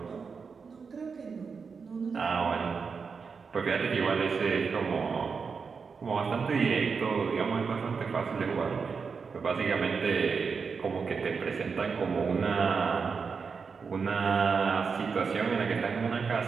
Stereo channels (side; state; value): left; quieter; 5.4 dB